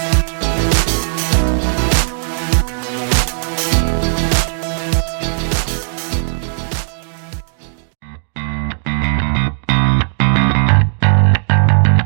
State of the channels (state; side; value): silent; left; digital silence